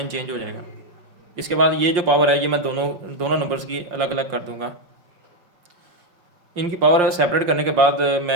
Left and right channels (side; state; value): left; late; 5.3 ms